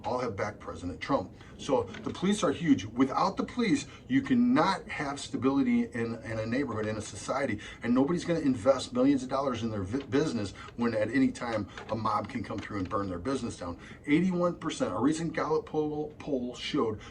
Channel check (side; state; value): both; identical; correlation 1.00